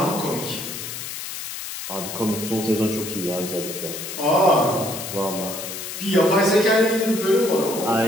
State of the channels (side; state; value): left; noise; hiss, 8 dB below the sound